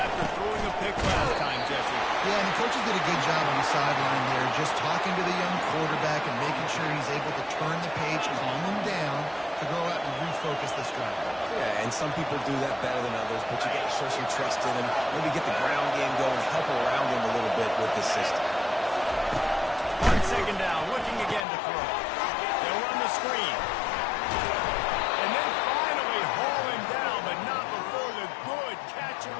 throwing a pick last time, Jesse. Yeah, and the coaches did a good job on the sideline there, just talking to the young quarterback and making sure he's able to turn the page, calm him down, to go out and refocus this drive. Yeah, and some people do that better than others, but you got to show some trust in him, maybe get the ground game going, help around him a little bit with this system. On 2nd down, looking again to throw. They'll run the screen. And then finally haul him down, but not before the good catch and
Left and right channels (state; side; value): drops out; right; at 21.5 s